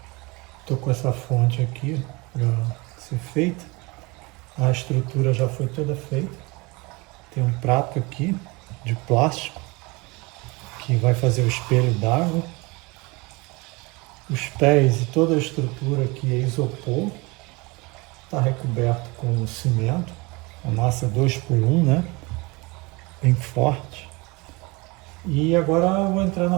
estou com essa fonte aqui para ser feita. A estrutura já foi toda feita. Tem um prato aqui de plástico que vai fazer o espelho d'água. Os pés e toda a estrutura aqui é isopor. Está recoberto com cimento. A massa 2x1, né? Bem forte. E agora eu vou entrar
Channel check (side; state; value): left; quieter; 25.6 dB